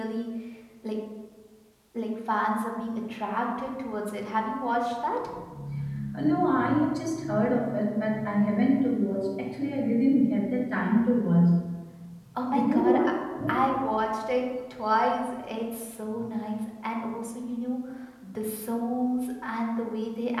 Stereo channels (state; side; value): identical; both; correlation 1.00